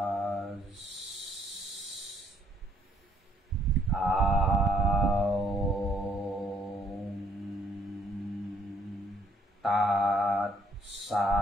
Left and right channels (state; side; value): normal; both; correlation 0.65